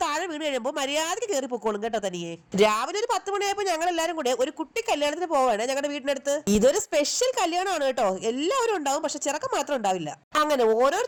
താഴെ വീണ് കഴിയുമ്പോൾ മര്യാദയ്ക്ക് കയറി പൊക്കോളും കേട്ടോ തനിയെ. രാവിലെ ഒരു 10 മണിയായപ്പോൾ ഞങ്ങൾ എല്ലാവരും കൂടെ ഒരു കുട്ടി കല്യാണത്തിന് പോവാണ് ഞങ്ങളുടെ വീടിനടുത്ത്. ഇതൊരു സ്പെഷ്യൽ കല്യാണമാണ് കേട്ടോ. എല്ലാവരും ഉണ്ടാവും, പക്ഷെ ചെറുക്കം മാത്രം ഉണ്ടാവില്ല. അങ്ങനെ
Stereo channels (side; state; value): both; identical; correlation 1.00